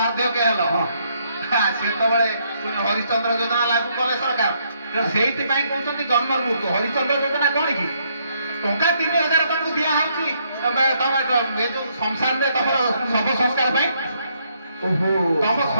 ହେଲ ହଁ ସେତେବେଳେ ପୁଣି ହରିଶ୍ଚନ୍ଦ୍ର ଯୋଜନା ଲାଗୁ କଲେ ସରକାର ତେଣୁ ସେଇଥିପାଇଁ କହୁଛନ୍ତି ଜନ୍ମରୁ ମୁକ୍ତ ହରିଶ୍ଚନ୍ଦ୍ର ଯୋଜନା କଣ କି ଟଙ୍କା 3,000 ତମକୁ ଦିଆହଉଛି ତମେ ଏ ଯୋଉ ସଂସାରରେ ତମର ଶବ ସଂସ୍କାର ପାଇଁ ଓହୋ ତମ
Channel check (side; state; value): both; inverted; correlation -0.72